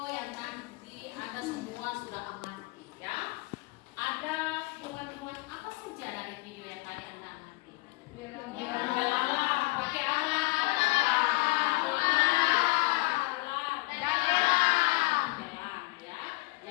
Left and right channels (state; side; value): quieter; right; 24.0 dB